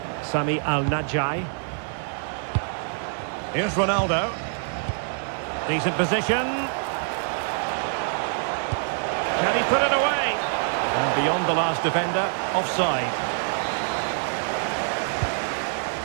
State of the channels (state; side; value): silent; left; 61 dB below the other